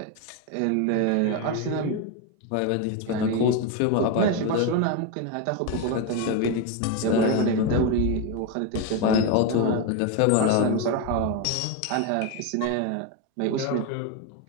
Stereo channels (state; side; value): different; both; correlation 0.02